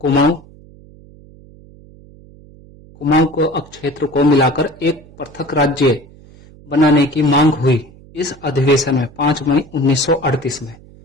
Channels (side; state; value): right; noise; hum, 23 dB below the sound